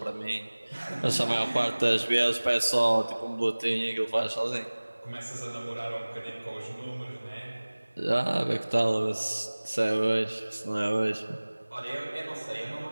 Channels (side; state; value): both; inverted; correlation -1.00